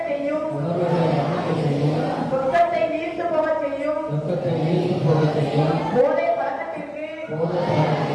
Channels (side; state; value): both; identical; correlation 1.00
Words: செய்யும் துக்கத்தை நீர்த்து போகச் செய்யும் போதை பழக்கத்திற்கு